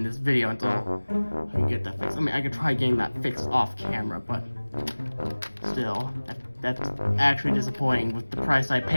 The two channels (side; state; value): both; inverted; correlation -1.00